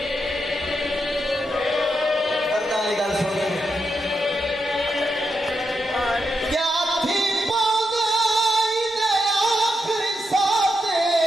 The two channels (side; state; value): both; normal; correlation 0.84